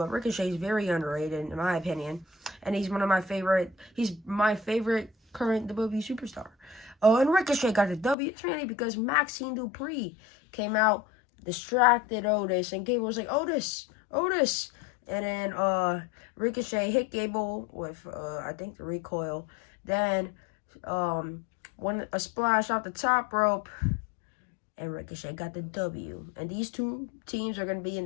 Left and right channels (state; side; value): drops out; right; at 8.2 s